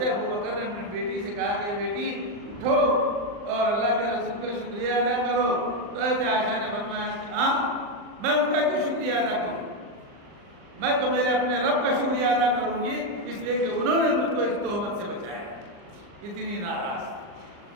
ابو بکر نے اپنی بیٹی سے کہا کہ بیٹی اٹھو اور اللہ کے رسول کا شکریہ ادا کرو۔ تو حضرت عائشہ نے فرمایا کہ ہاں میں ان کا کیوں شکریہ ادا کروں، میں تو میرے اپنے رب کا شکریہ ادا کروں گی اس لیے کہ انہوں نے مجھ کو اس تہمت سے بچایا، اتنی ناراض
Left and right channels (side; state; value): left; late; 39 ms